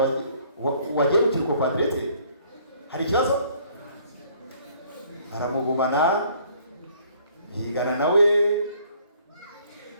wagiye mu kirugo kwa diregiteri, hari ikibazo? Aramugumana, bigana nawe,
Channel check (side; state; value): both; inverted; correlation -0.60